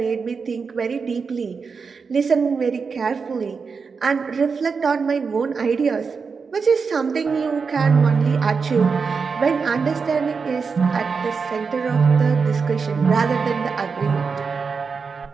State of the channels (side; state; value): left; quieter; 5.2 dB